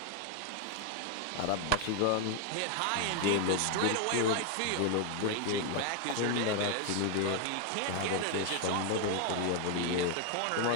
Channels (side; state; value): both; different; correlation 0.00